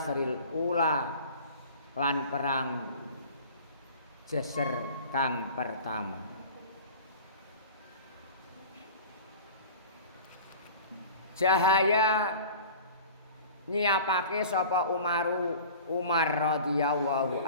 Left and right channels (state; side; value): inverted; both; correlation -0.41